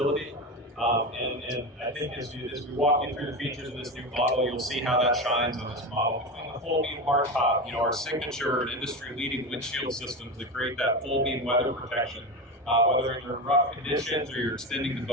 And I think as we walk you through the features of this new model, you'll see how that shines on this model. Between the full beam hardtop, our signature and industry-leading windshield systems that create that full beam weather protection, whether you're in rough conditions or you're extending the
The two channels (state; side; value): normal; both; correlation 0.21